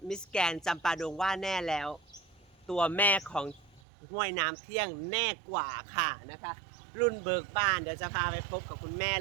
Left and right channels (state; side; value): drops out; left; at 3.8 s